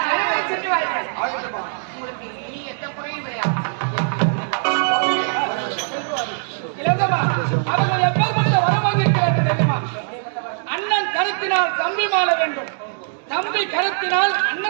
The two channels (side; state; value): left; silent; digital silence